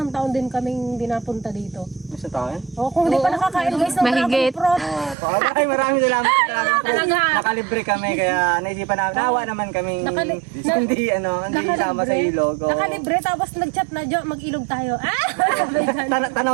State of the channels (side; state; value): left; drops out; at 5.2 s